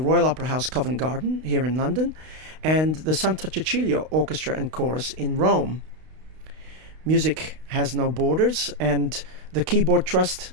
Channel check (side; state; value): left; late; 32 ms